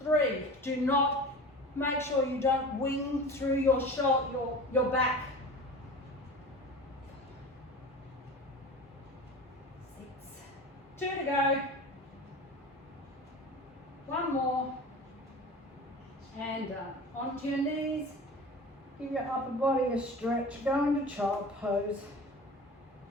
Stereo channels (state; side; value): normal; both; correlation 0.36